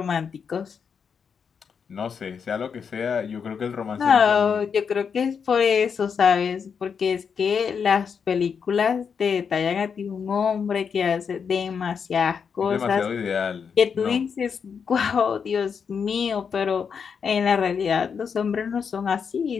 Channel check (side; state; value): right; quieter; 6.5 dB